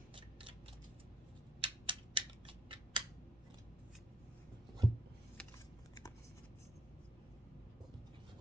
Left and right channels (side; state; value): both; normal; correlation 0.70